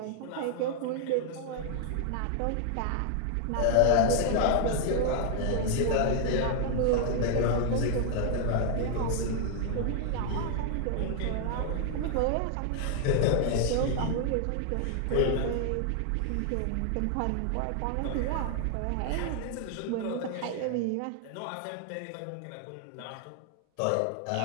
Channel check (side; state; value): both; different; correlation 0.00